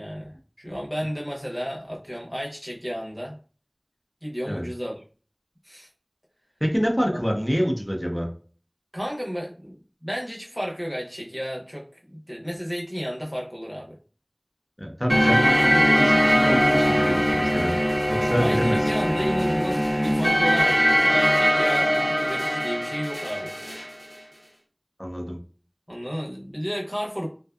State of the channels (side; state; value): both; identical; correlation 1.00